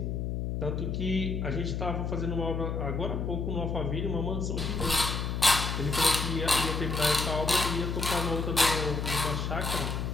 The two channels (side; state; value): left; noise; hum, 2 dB below the sound